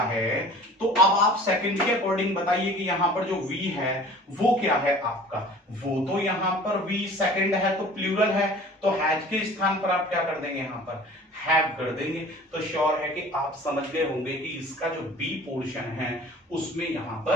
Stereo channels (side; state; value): both; normal; correlation 0.45